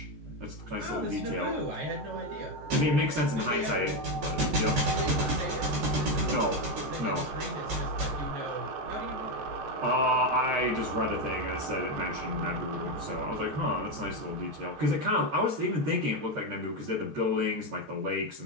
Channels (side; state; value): left; late; 13 ms